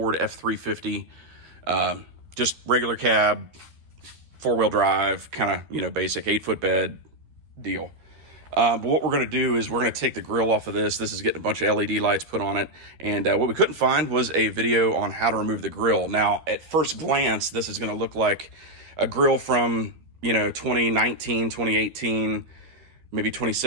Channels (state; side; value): late; left; 13 ms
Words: F350, just regular cab, four-wheel drive, kind of, basic 8-foot bed deal. But what we're going to do is we're going to take the grill off of this. This is getting a bunch of LED lights put on it. And what we couldn't find was a video on how to remove the grill. Now, at first glance, this is going to look like a grill from, 2019, 2018, maybe